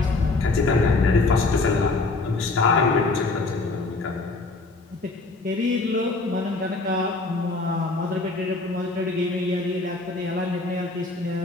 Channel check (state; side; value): quieter; right; 3.4 dB